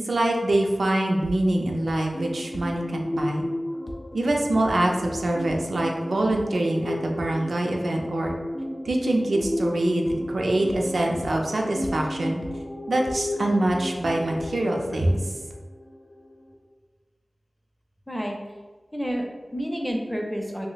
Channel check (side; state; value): both; normal; correlation 0.97